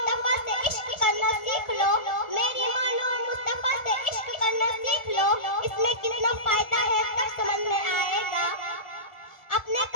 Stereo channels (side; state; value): right; late; 1.4 ms